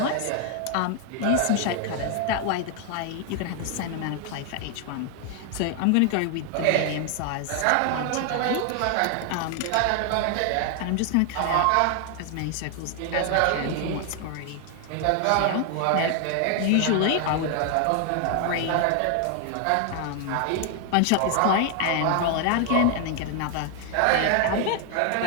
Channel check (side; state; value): both; different; correlation 0.00